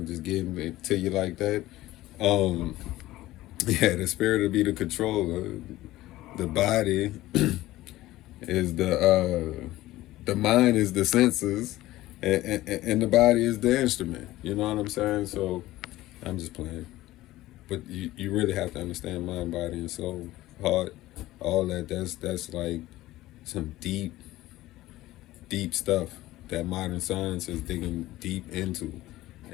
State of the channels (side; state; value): right; quieter; 16.5 dB